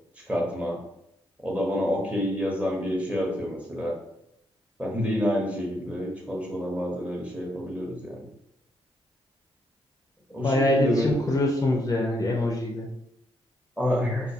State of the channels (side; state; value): both; normal; correlation 0.77